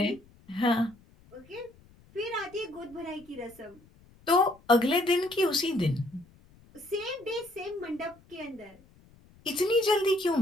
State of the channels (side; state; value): left; noise; rumble, 27 dB below the sound